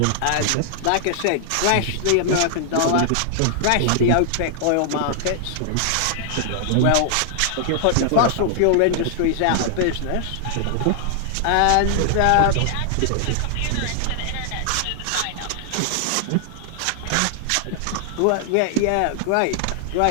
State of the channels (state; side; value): different; both; correlation 0.00